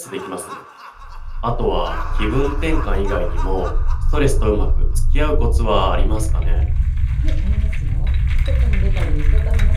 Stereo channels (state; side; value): identical; both; correlation 1.00